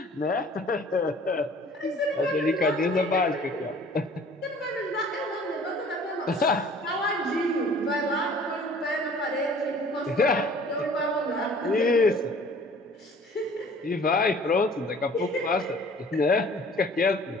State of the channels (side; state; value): both; normal; correlation 0.51